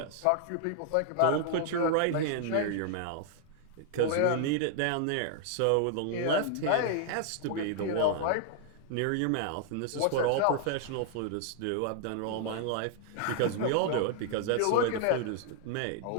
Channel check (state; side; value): different; both; correlation 0.00